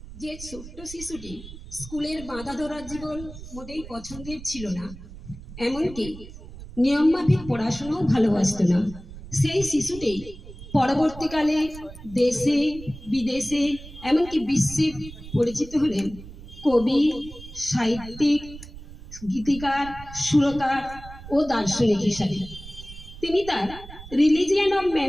যে ছোট্ট শিশুটি স্কুলের বাঁধা ধরার জীবন মোটেই পছন্দের ছিল না, এমনকি নিয়মমাফিক পড়াশোনাও ভালোবাসতো না, সেই শিশুটি পরবর্তীকালে দেশে বিদেশে এমনকি বিশ্বে পরিচিত হলেন কবি, সাহিত্যিক, গীতিকার, সুরকার ও দার্শনিক হিসাবে। তিনি তার রিলিজিয়ান অফ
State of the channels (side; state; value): right; noise; rumble, 15 dB below the sound